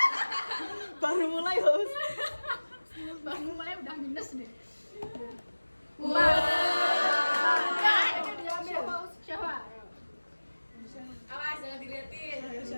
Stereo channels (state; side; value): inverted; both; correlation -1.00